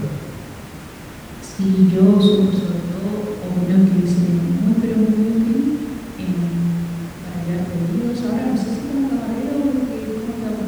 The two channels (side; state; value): both; identical; correlation 1.00